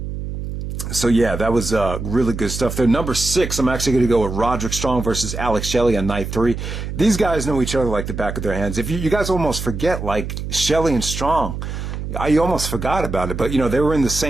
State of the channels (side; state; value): right; noise; hum, 6 dB below the sound